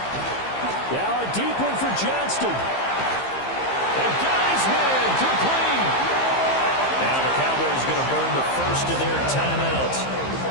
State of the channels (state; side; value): late; right; 15 ms